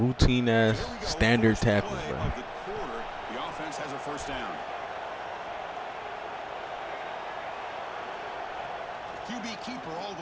ass standard tackles, bro. The offense has a first down. QB keeper all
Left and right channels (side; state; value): both; identical; correlation 1.00